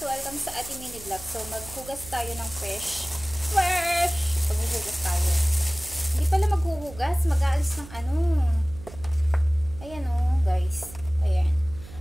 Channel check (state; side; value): noise; right; hum, 16 dB below the sound